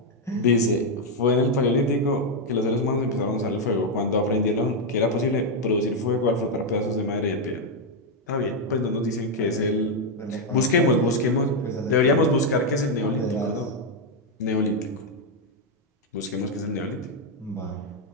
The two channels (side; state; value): both; normal; correlation 0.02